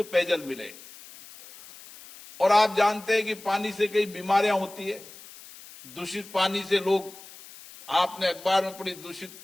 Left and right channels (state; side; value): noise; left; hiss, 19 dB below the sound